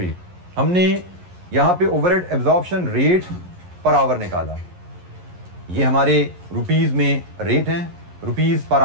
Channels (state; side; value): late; left; 11 ms